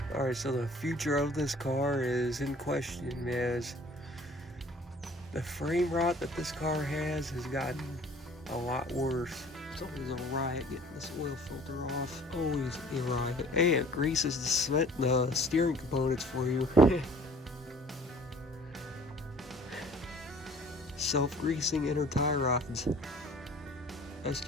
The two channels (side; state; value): both; normal; correlation 0.51